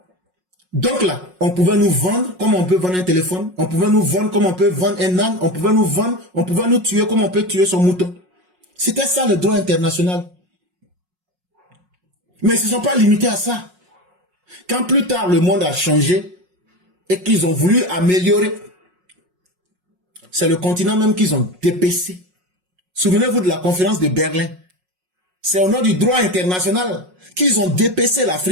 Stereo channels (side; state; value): left; late; 5.5 ms